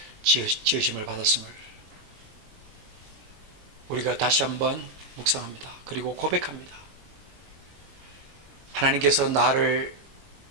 지으심을 받았음을 우리가 다시 한번 묵상합니다. 그리고 고백합니다. 하나님께서 나를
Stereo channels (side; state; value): left; late; 21 ms